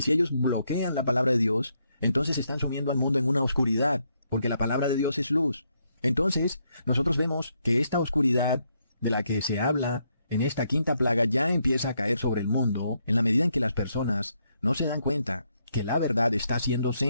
si ellos bloquean la palabra de Dios, entonces están sumiendo al mundo en una oscuridad, porque la palabra de Dios es luz. Entonces, nosotros vemos que esta oscuridad de la que se habla en esta quinta plaga ya empieza a caer sobre el mundo en la medida en que las personas no se dan cuenta que la verdad está siendo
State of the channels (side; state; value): both; inverted; correlation -0.76